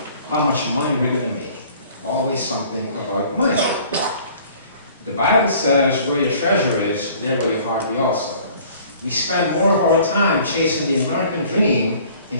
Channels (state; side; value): inverted; both; correlation -0.52